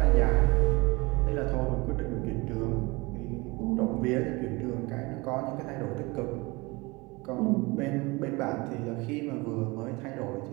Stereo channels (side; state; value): left; quieter; 24.6 dB